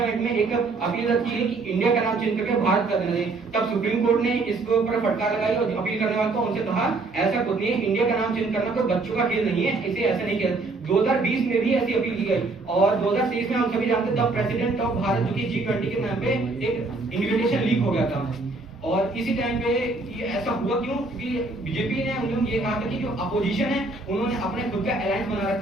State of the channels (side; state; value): left; quieter; 3.4 dB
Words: में एक अपील की है कि इंडिया का नाम चेंज करके भारत कर देना चाहिए। तब सुप्रीम कोर्ट ने इसके ऊपर फटकार लगाई और अपील करने वालों को उनसे कहा ऐसा कुछ नहीं है, इंडिया का नाम चेंज करना कोई बच्चों का खेल नहीं है, इसे ऐसे नहीं किया। 2020 में भी ऐसी अपील की गई और 2023 में हम सभी जानते हैं तब प्रेसिडेंट ऑफ भारत जो कि G20 के नाम पे एक इन्विटेशन लीक हो गया था। और इसी टाइम पे ये ऐसा हुआ क्यों? क्योंकि बीजेपी ने उन्होंने ये कहा था कि जो अपोजिशन है उन्होंने अपने खुद का अलायंस बना